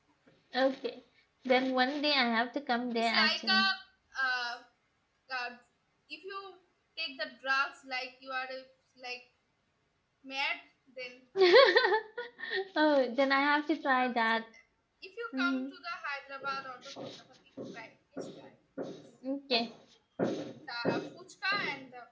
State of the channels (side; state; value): both; identical; correlation 1.00